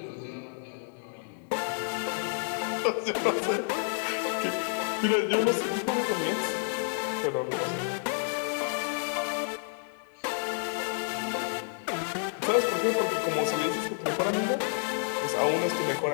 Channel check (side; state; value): right; silent; digital silence